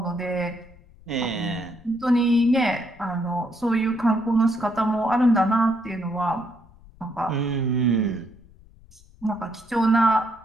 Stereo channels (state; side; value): noise; left; rumble, 25 dB below the sound